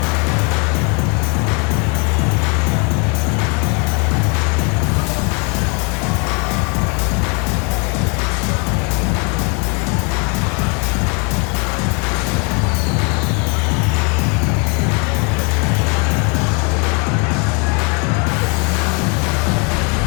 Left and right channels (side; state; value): right; quieter; 34.0 dB